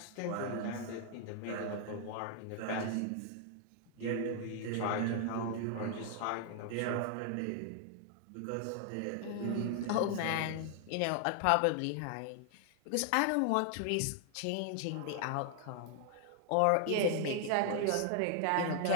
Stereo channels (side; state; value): both; different; correlation 0.00